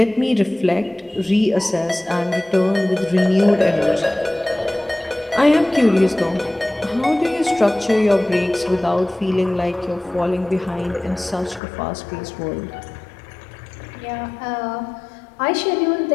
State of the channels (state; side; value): drops out; right; at 11.6 s